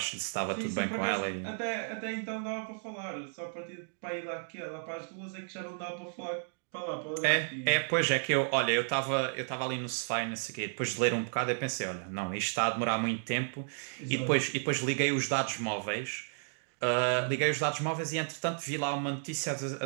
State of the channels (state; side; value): silent; left; digital silence